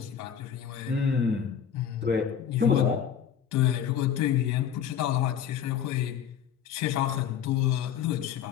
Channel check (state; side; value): quieter; right; 8.6 dB